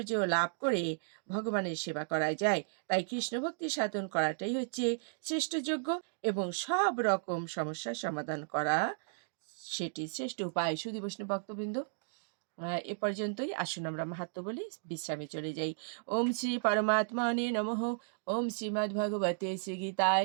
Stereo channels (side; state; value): left; silent; digital silence